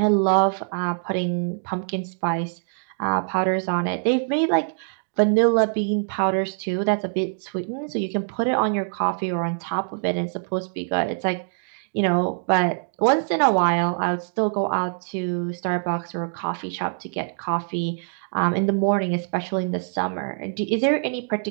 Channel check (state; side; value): silent; left; digital silence